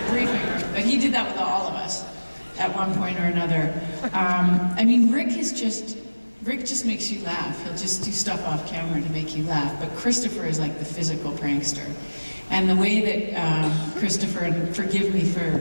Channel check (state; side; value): inverted; both; correlation -1.00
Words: briefing room. But he did that with all of us at one point or another. Rick just makes you laugh. He'll just do stuff off camera to make you laugh. But Christopher is like the physical prankster. And the way that Christopher, and forgive me